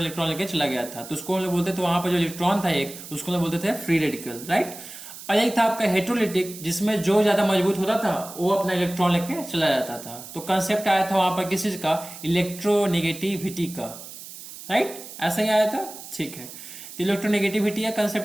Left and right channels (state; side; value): noise; right; hiss, 14 dB below the sound